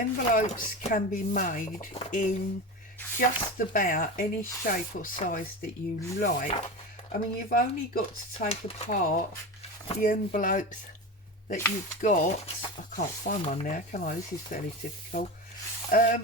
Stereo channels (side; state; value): both; normal; correlation 0.25